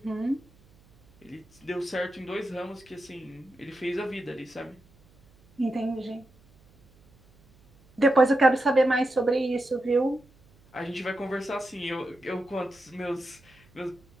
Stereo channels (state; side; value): noise; right; hum, 29 dB below the sound